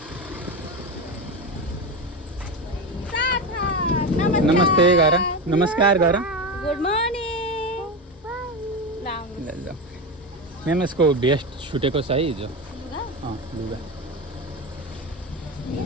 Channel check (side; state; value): both; normal; correlation 0.19